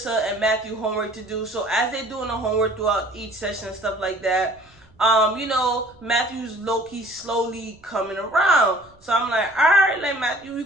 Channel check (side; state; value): right; noise; rumble, 29 dB below the sound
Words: and Matthew homework to do. So as they're doing the homework throughout each session and stuff like that, Matthew's low-key slowly coming around. So I'm like, all right, like, Matthew, you